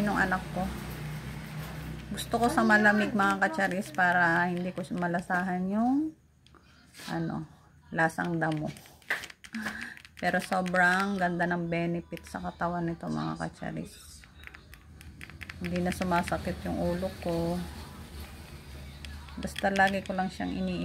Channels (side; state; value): both; identical; correlation 1.00